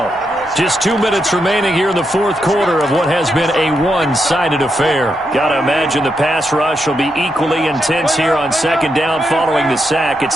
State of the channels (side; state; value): both; normal; correlation 0.83